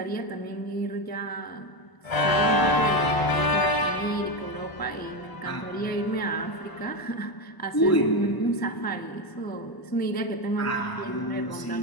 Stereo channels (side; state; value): right; late; 1.0 ms